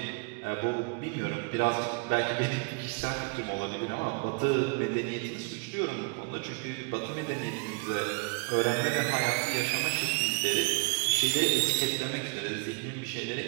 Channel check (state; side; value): quieter; left; 31.9 dB